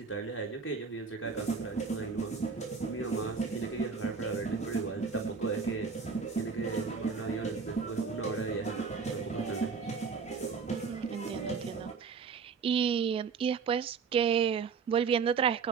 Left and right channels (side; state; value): left; quieter; 5.5 dB